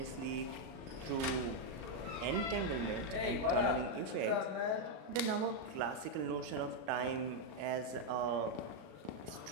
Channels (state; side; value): late; left; 37 ms